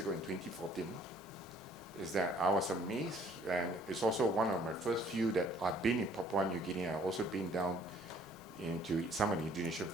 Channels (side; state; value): both; normal; correlation 0.59